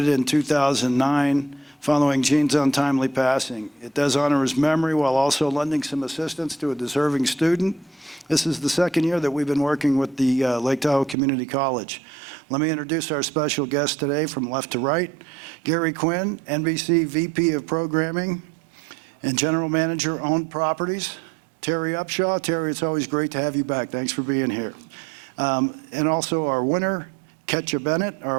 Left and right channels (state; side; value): drops out; left; at 11.2 s